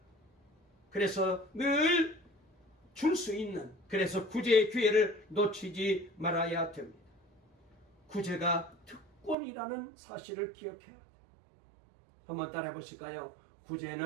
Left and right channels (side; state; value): left; drops out; at 9.3 s